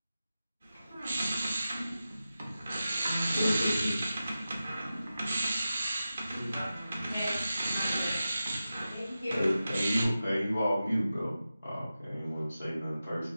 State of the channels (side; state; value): both; inverted; correlation -0.93